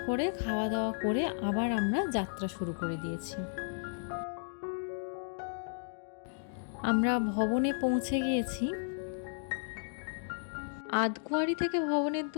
করে খাওয়া দাওয়া করে আবার আমরা যাত্রা শুরু করে দিয়েছি। আমরা ভবনে পৌঁছে গিয়েছি। আধকুয়ারি থেকে ভবনের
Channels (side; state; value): right; silent; digital silence